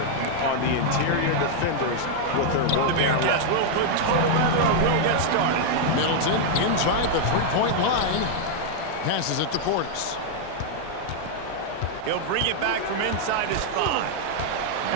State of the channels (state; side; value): different; both; correlation -0.01